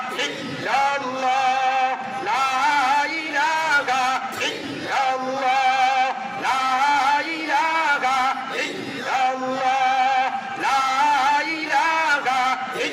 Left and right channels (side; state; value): both; identical; correlation 1.00